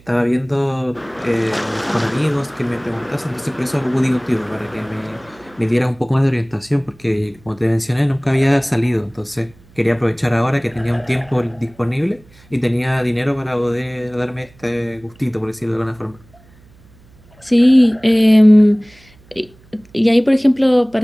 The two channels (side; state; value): right; noise; hum, 28 dB below the sound